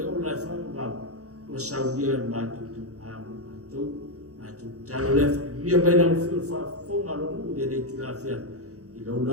ola e whanga wau. O saudia le matou tu amo matou. Talo lefa, mia baina ufiu fonga longu de nei tu la fia. I lo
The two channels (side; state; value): left; late; 0.66 ms